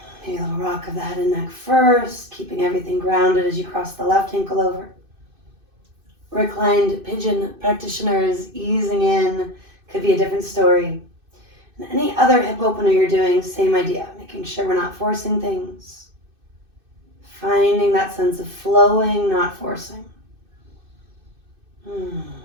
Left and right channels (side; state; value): left; late; 2.6 ms